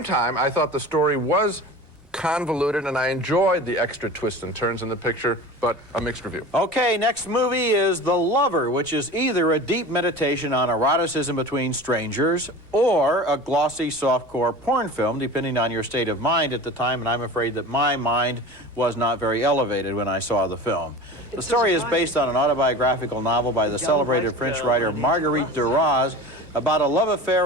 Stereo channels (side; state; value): both; normal; correlation 0.35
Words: time, I thought the story was convoluted, and I enjoyed the extra twists and turns in the picture, but a mixed review. Okay, next movie is The Lover, which is either a deep meditation on eroticism between strangers or a glossy softcore porn film, depending on your state of mind at the time, and I'm afraid that my mind was not very elevated when I saw the film. The story is based on an autobiographical novel by the celebrated French writer Marguerite Duras about a love